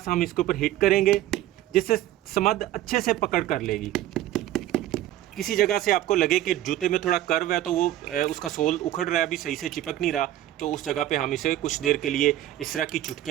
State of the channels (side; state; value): left; quieter; 13.6 dB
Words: हम इसके ऊपर हिट करेंगे जिससे स्मथ अच्छे से पकड़ कर लेगी। किसी जगह से आपको लगे कि जूते में थोड़ा कर्व है तो वो उसका सोल उखड़ रहा है, अभी सही से चिपक नहीं रहा, तो उस जगह पे हम इसे कुछ देर के लिए इस तरह की